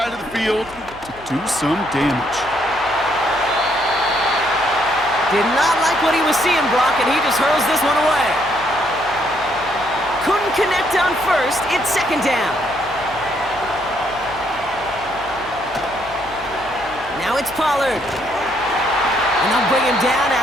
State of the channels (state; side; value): noise; left; hum, 21 dB below the sound